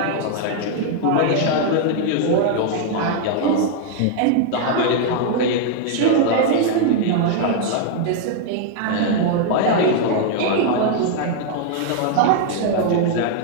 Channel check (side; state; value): both; different; correlation 0.00